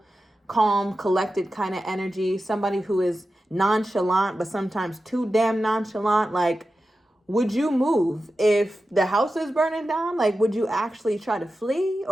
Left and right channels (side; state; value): both; normal; correlation 0.92